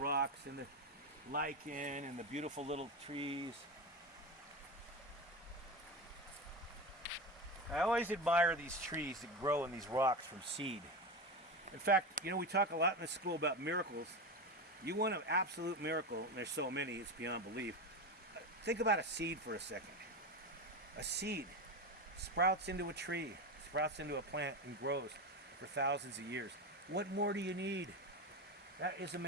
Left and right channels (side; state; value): both; normal; correlation 0.20